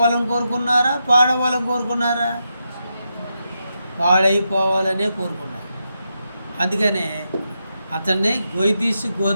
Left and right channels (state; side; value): inverted; both; correlation -0.85